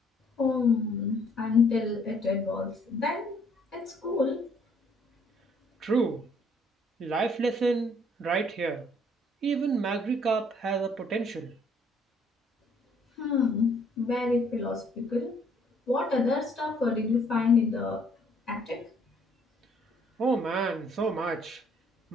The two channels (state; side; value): normal; both; correlation 0.64